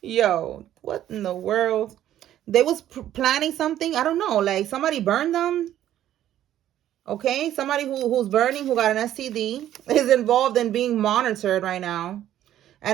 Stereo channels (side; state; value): left; quieter; 12.0 dB